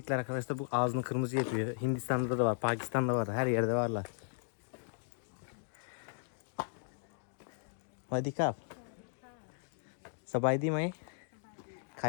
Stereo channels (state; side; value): silent; right; digital silence